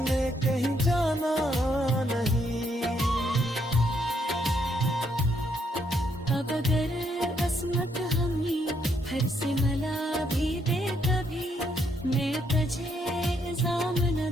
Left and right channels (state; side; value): normal; both; correlation 0.74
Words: कहीं जाना नहीं। अब अगर